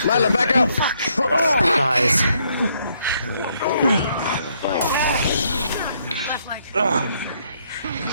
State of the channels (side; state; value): both; inverted; correlation -0.72